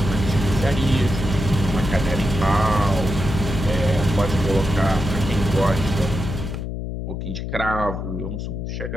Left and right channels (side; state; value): left; noise; hum, 5 dB below the sound